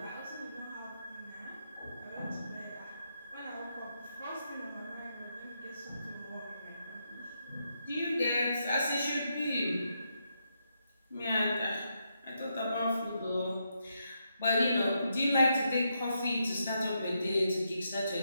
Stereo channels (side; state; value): both; inverted; correlation -0.81